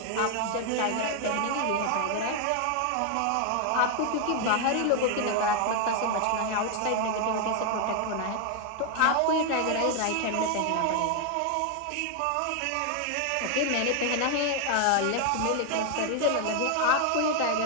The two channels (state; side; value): different; both; correlation 0.00